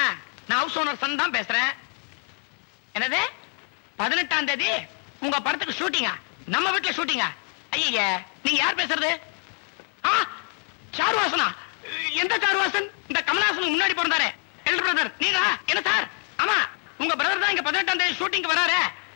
நான் ஹவுஸ் ஓனர் சன் தான் பேசுறேன். என்னது 18ஆம் தேதி உங்க படத்துக்கு ஷூட்டிங்கா? நம்ம வீட்டுல ஷூட்டிங்கா? ஐயா, நீங்க யார் பேசுறது? சாருவாசனா? எந்த சாருவாசன்? இந்த கமலஹாசனுக்கு முன்னாடி பிறந்தாரே எல்டர் பிரதர் நீங்க? என்ன சார்? ஆமா, உங்க பிரதர் தான் இங்க 18ஆம் தேதி ஷூட்டிங் வராரு,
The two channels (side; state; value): right; quieter; 36.4 dB